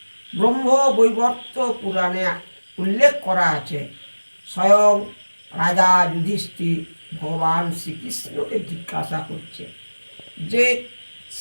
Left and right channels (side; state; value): both; inverted; correlation -1.00